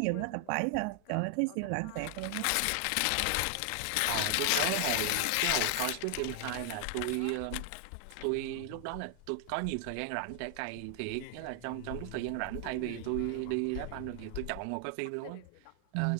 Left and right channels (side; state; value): both; different; correlation 0.00